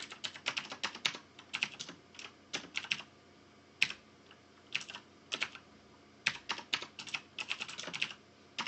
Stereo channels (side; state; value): both; identical; correlation 1.00